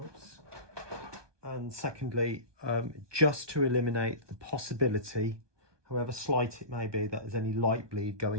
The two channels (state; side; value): late; left; 1.2 ms